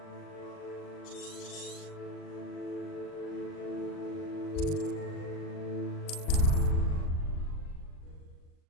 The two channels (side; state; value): right; late; 39 ms